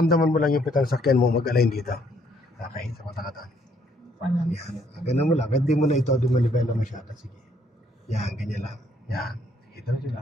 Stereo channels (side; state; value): both; normal; correlation 0.68